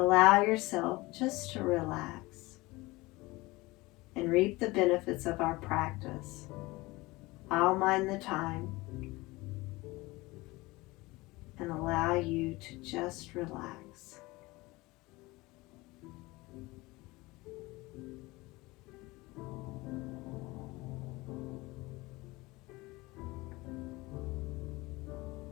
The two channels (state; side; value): quieter; right; 21.6 dB